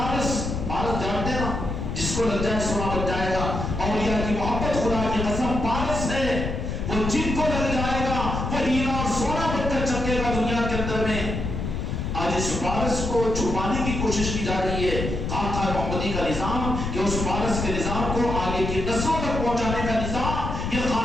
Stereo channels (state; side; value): noise; left; rumble, 3 dB below the sound